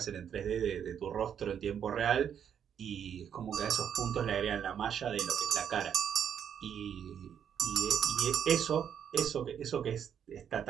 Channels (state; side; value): quieter; left; 8.5 dB